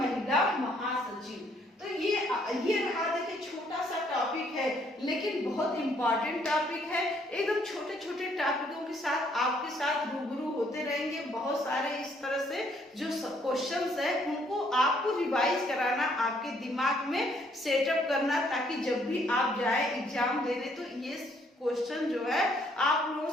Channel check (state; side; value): normal; both; correlation 0.67